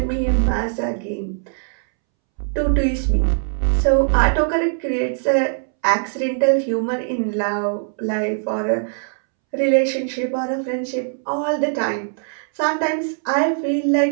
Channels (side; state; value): left; silent; 65 dB below the other